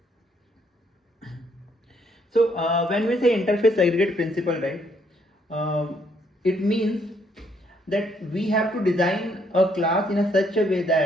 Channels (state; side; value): normal; both; correlation 0.70